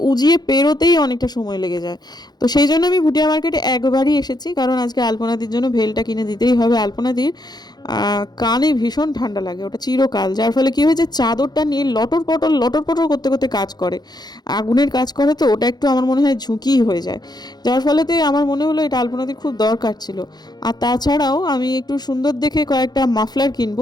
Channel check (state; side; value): late; right; 0.20 ms